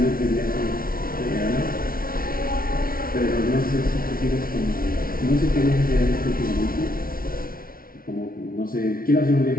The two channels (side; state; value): right; late; 0.43 ms